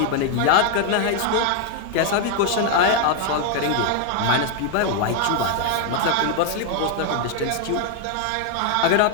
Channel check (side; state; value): both; different; correlation 0.01